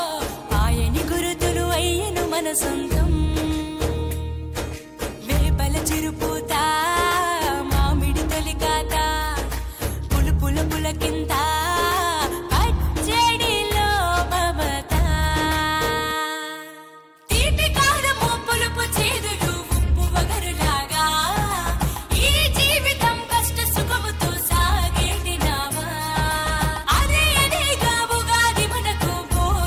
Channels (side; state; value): both; identical; correlation 1.00